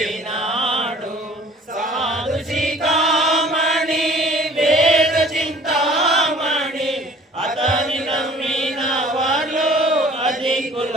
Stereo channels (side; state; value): both; normal; correlation 0.51